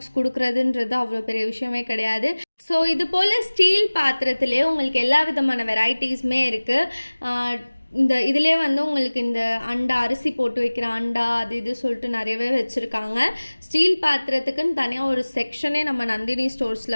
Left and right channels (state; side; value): inverted; both; correlation -1.00